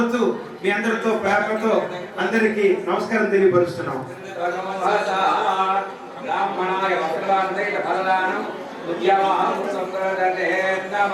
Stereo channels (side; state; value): both; identical; correlation 1.00